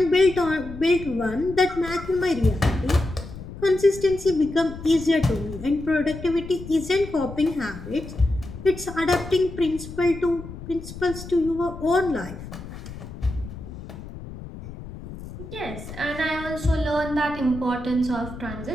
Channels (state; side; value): noise; left; rumble, 12 dB below the sound